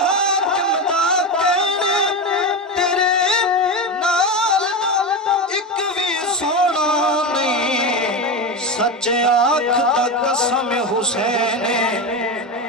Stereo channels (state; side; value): normal; both; correlation 0.18